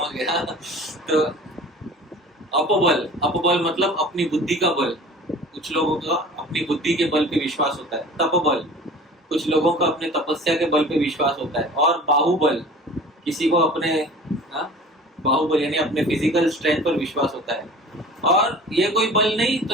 गया? तो अपबल, अपबल मतलब अपनी बुद्धि का बल। कुछ लोगों का अपनी बुद्धि के बल पे विश्वास होता है। तपबल, कुछ लोगों का अपने तपस्या के बल पे विश्वास होता है। और बाहुबल, किसी को अपने बाहुबल यानी अपने फिजिकल स्ट्रेंथ पर विश्वास होता है। और ये कोई बल नहीं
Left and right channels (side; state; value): both; normal; correlation 0.42